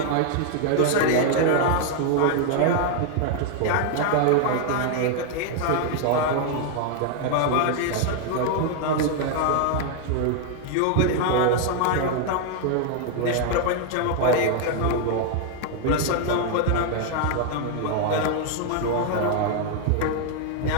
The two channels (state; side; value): different; both; correlation 0.00